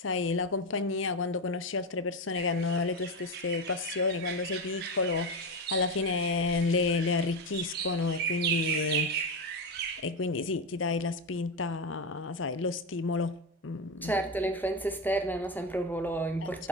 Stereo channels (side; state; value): both; normal; correlation 0.14